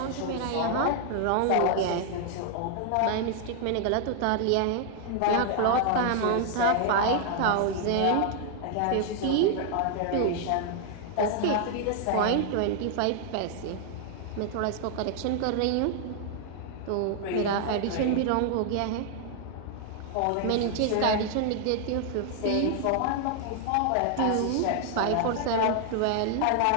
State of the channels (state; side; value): different; both; correlation 0.00